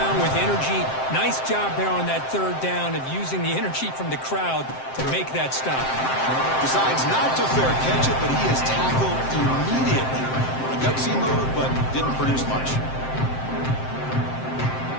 with energy. Nice job there on that 3rd down of using the energy from the crowd to make that stop. Decides not to fair catch it, but he is tackled immediately. A gutsy move, but didn't produce much.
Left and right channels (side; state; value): right; late; 7.6 ms